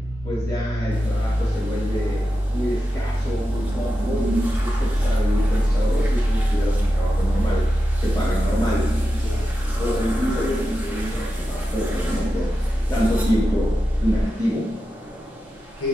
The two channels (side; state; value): both; normal; correlation 0.91